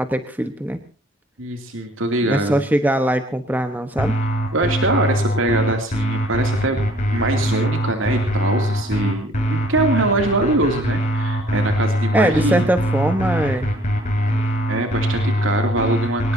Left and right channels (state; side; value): normal; both; correlation 0.57